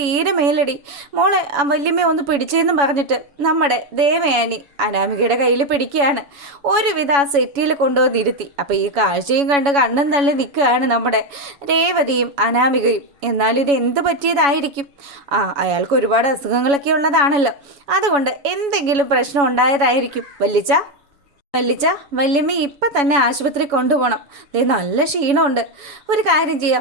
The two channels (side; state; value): left; late; 7.1 ms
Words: മേലടി, മോളെ വല്യമ്മ ഒന്ന് പിടിച്ചെന്നും പറഞ്ഞിട്ട് നമ്മുടെ ദേവയാനി അനാമികയുടെ കയ്യിൽ പിടിക്കുകയാണ്. ഒരുവിധ ആ സെറ്റിയിൽ കൊണ്ടുവന്നിരുത്തി. അപ്പോൾ ഈ കാഴ്ചയും കണ്ട് കണ്ണും തള്ളി നിൽക്കുകയാണ് നമ്മുടെ രേവതിയും അനാമികയും. എന്നാലും ഇത് എന്ത് പറ്റിയതായിരിക്കും? അയാൾക്ക് ഒരുപാട് അസുഖങ്ങളൊക്കെ ഉള്ളതാണല്ലോ, അതുകൊണ്ട് എന്തെങ്കിലും പ്രശ്നം ഉണ്ടായതായിരിക്കും. വല്ലിച്ച വല്യമ്മ ഇപ്പം തന്നെ ആശുപത്രി കൊണ്ടുപോകണം. നല്ല ക്ഷീണമുണ്ട്. ഒരു കാര്യം